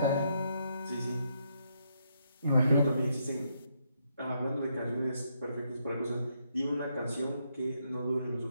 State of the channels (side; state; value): both; inverted; correlation -0.77